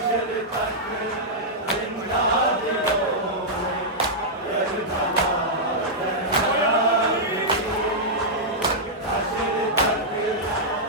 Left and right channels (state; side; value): normal; both; correlation -0.09